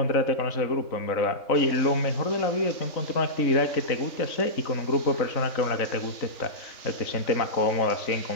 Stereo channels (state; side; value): late; right; 3.6 ms